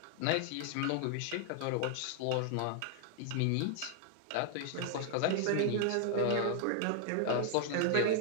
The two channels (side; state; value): both; different; correlation 0.00